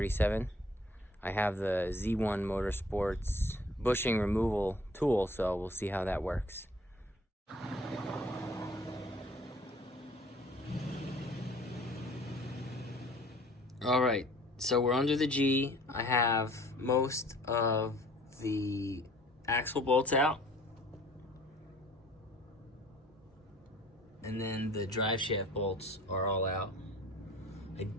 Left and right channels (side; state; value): both; normal; correlation 0.52